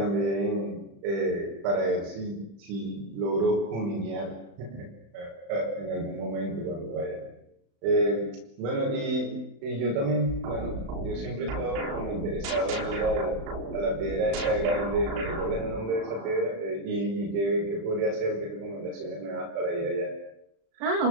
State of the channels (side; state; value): left; late; 35 ms